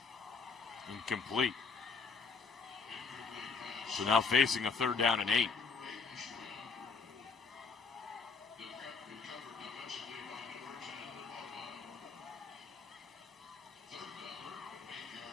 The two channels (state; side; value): quieter; right; 5.0 dB